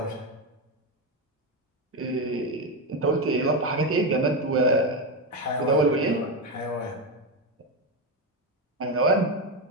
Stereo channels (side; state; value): both; normal; correlation 0.11